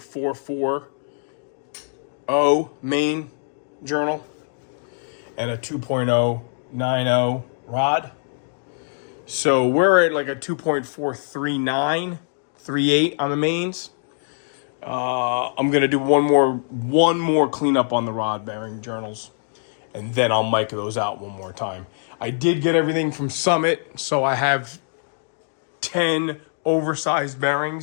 main journal and a 2.090 rod. So we're at like a 2.43938 on the mains. I'm gonna do one more cleanup on the rod bearing journals, and then I'll mic those out one more time. I did get everything from Summit, so I have 10 oversized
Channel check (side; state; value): right; silent; digital silence